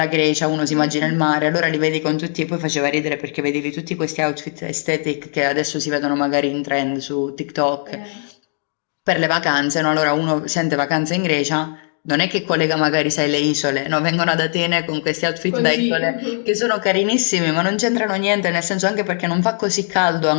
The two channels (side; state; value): right; silent; 66 dB below the other